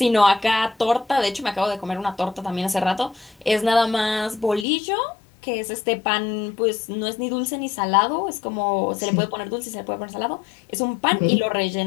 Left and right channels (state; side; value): drops out; right; at 4.7 s